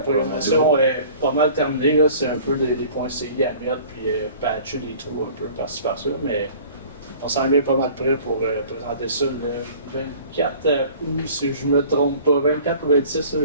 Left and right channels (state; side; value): inverted; both; correlation -0.47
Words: est pas mal terminée. Là. C'est un peu des points CI à mettre, puis patcher des trous un peu par-ci par-là. Mais on s'en est pas mal prêt pour présenter ça le 24 août, si je me trompe pas. 24 ou 26, là,